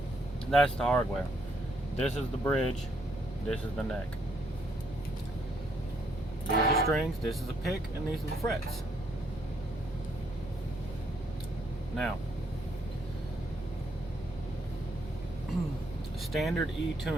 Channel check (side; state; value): both; normal; correlation 0.72